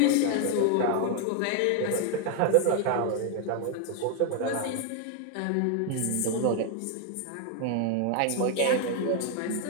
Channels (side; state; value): both; different; correlation 0.00